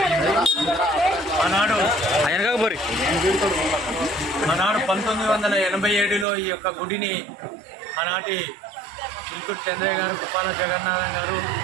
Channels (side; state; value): left; drops out; at 6.2 s